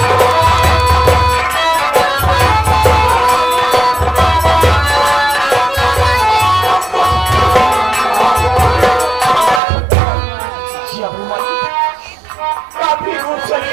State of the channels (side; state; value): left; drops out; at 9.6 s